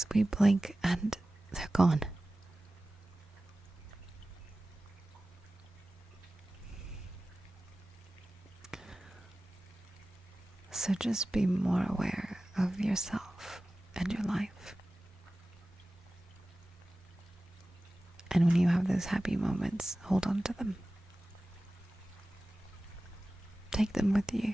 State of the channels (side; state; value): both; normal; correlation 0.96